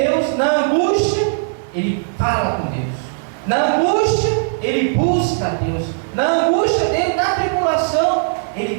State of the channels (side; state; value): left; silent; digital silence